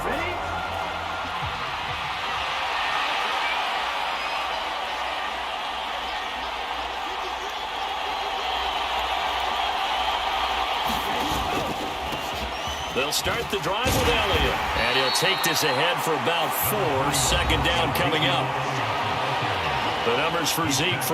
They'll start the drive with Elliott. And he'll take this ahead for about 4. Second down coming up. The numbers for Zeke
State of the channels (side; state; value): both; identical; correlation 1.00